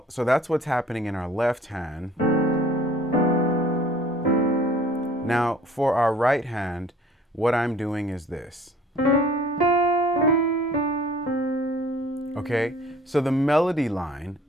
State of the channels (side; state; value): both; normal; correlation 0.52